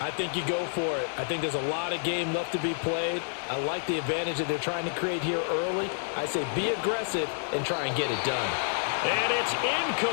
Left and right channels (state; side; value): silent; right; digital silence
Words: think you go for it. I think there's a lot of game left to be played. I like the advantage that they're trying to create here early. I say be aggressive and try and get it done. And it's